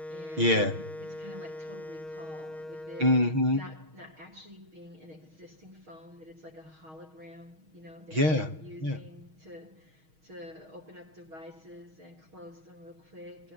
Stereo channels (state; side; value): late; left; 6.3 ms